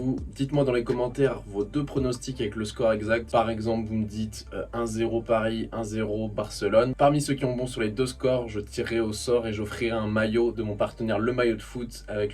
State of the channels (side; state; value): both; identical; correlation 1.00